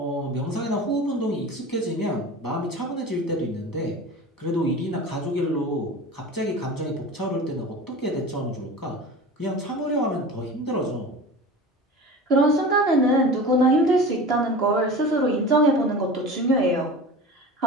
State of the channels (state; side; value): normal; both; correlation 0.34